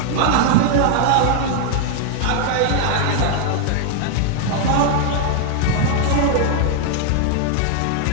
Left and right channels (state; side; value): different; both; correlation 0.00